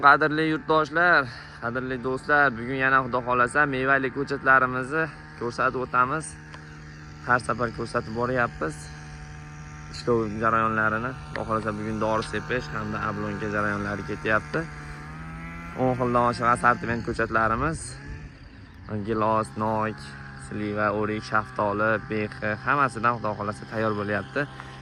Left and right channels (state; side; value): identical; both; correlation 1.00